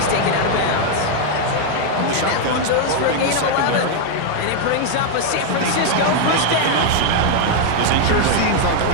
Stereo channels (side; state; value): both; different; correlation 0.00